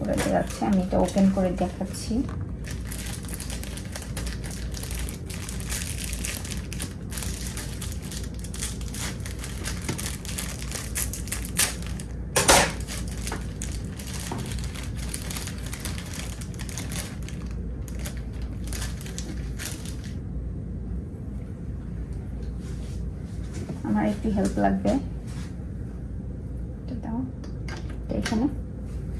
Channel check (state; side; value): identical; both; correlation 1.00